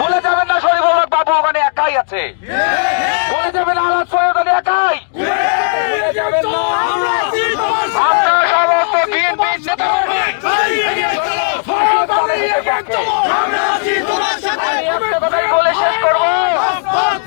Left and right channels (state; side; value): silent; right; digital silence